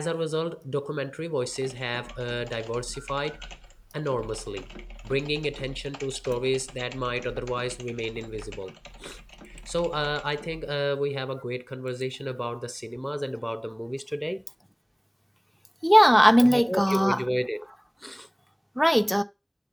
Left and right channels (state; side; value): identical; both; correlation 1.00